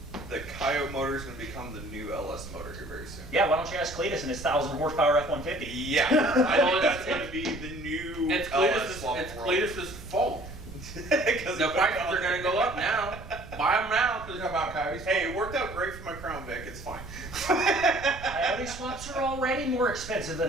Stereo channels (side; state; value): right; noise; rumble, 13 dB below the sound